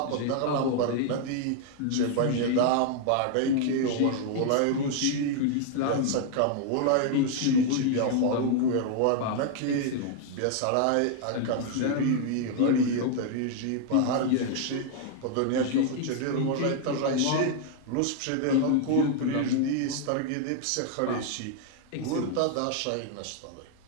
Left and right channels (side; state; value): both; different; correlation 0.00